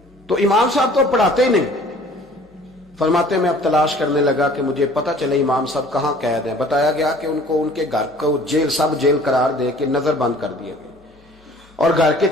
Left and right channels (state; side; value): normal; both; correlation 0.51